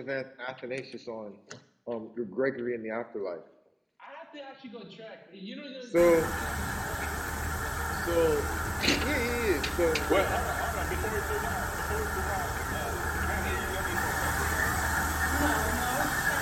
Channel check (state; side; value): identical; both; correlation 1.00